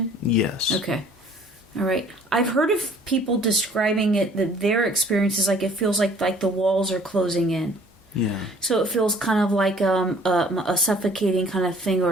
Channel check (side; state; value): both; normal; correlation 0.55